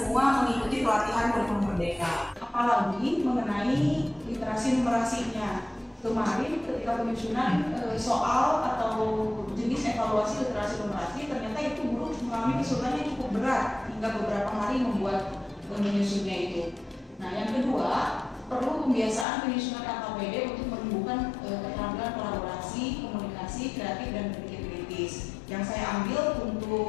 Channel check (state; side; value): drops out; right; at 19.2 s